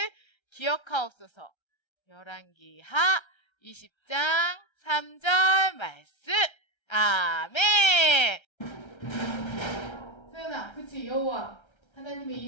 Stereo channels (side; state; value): right; late; 1.3 ms